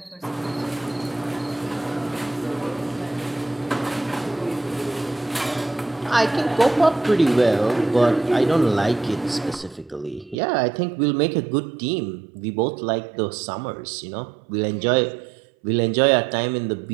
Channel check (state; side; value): drops out; left; at 10.4 s